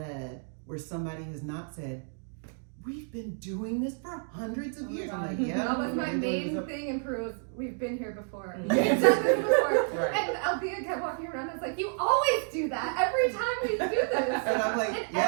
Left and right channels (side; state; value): left; silent; 58 dB below the other